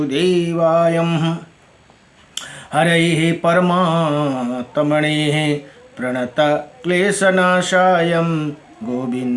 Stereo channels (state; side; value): identical; both; correlation 1.00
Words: हरये परमात्मने प्रणतक्लेशनाशाय